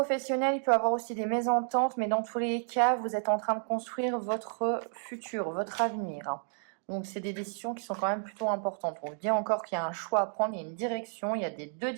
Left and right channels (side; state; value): left; silent; 56 dB below the other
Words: il peut y avoir aussi des mésententes, mais dans tous les cas, vous êtes en train de construire votre futur, votre avenir. Donc, c'est des décisions qui sont quand même plutôt importantes. On vous dit encore qu'il y a un choix à prendre, il y a une direction, il y a des deux